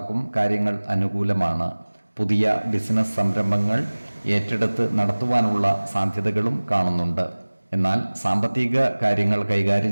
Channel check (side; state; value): both; inverted; correlation -1.00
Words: കാര്യങ്ങൾ അനുകൂലമാണ്. പുതിയ ബിസിനസ് സംരംഭങ്ങൾ ഏറ്റെടുത്ത് നടത്തുവാനുള്ള സാധ്യതകളും കാണുന്നുണ്ട്. എന്നാൽ സാമ്പത്തിക കാര്യങ്ങൾ